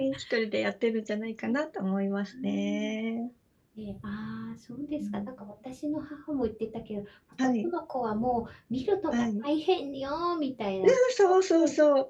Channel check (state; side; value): identical; both; correlation 1.00